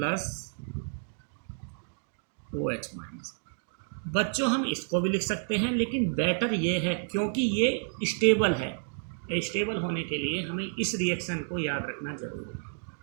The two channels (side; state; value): left; silent; digital silence